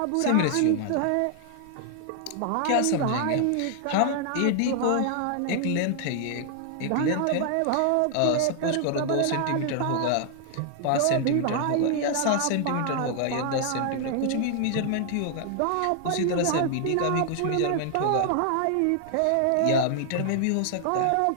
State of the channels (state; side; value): different; both; correlation 0.00